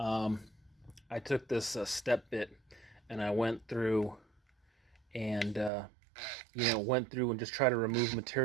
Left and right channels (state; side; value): drops out; left; at 5.7 s